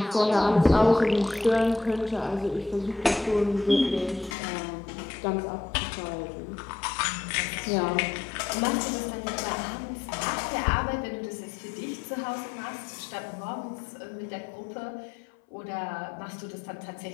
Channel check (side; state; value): right; drops out; at 4.4 s